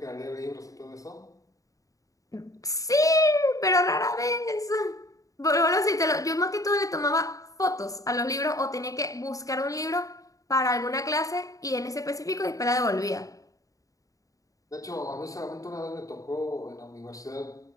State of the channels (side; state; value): right; late; 0.16 ms